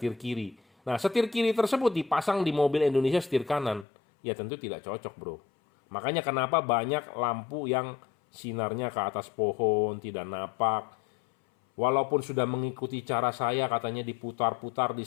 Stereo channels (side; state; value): right; drops out; at 3.9 s